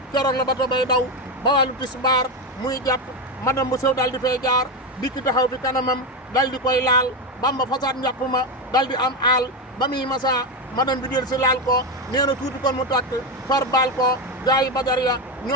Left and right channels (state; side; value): normal; both; correlation 0.12